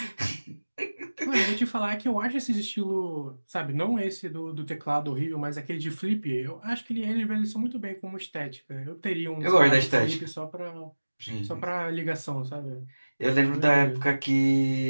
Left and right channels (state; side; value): inverted; both; correlation -1.00